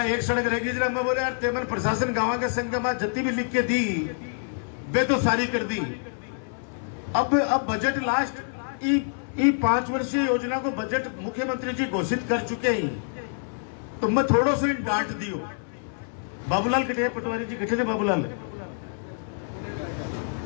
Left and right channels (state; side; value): silent; right; digital silence